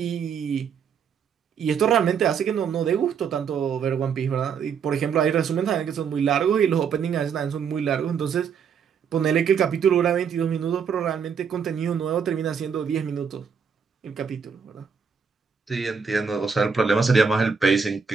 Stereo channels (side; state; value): left; quieter; 6.6 dB